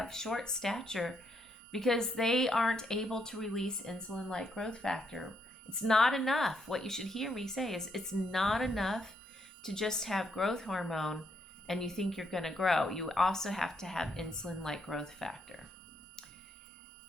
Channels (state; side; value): normal; both; correlation 0.76